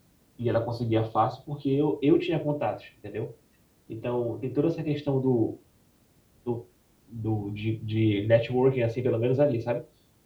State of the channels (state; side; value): identical; both; correlation 1.00